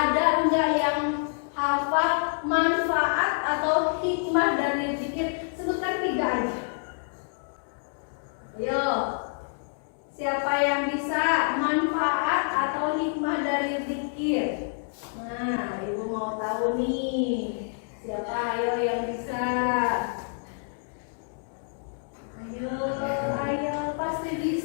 enggak yang hafal manfaat atau hikmah dari zikir? Sebutkan 3 aja. Ayo, siapa yang bisa manfaat atau hikmah dari zikir? Nah, ibu mau tahu nih. Siapa ayo yang bisa? Ayo, pasti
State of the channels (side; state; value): right; silent; digital silence